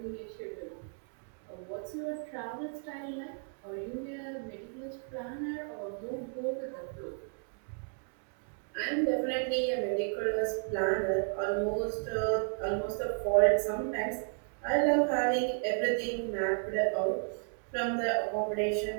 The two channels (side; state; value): left; silent; 56 dB below the other